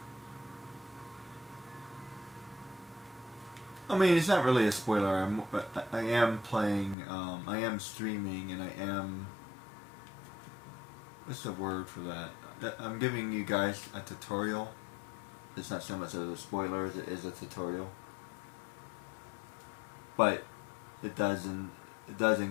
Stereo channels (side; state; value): right; drops out; at 7.0 s